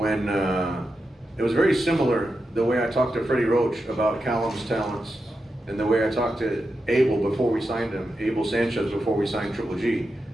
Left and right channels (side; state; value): both; normal; correlation 0.88